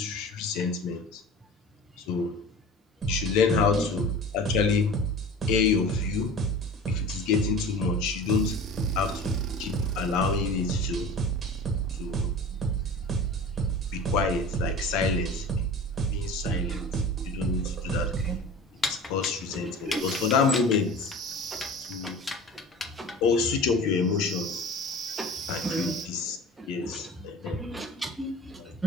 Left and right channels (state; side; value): normal; both; correlation 0.38